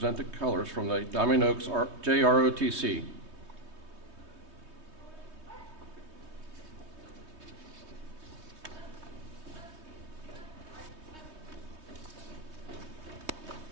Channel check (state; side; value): late; left; 3.2 ms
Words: the colors from the Diamond Oaks JROTC.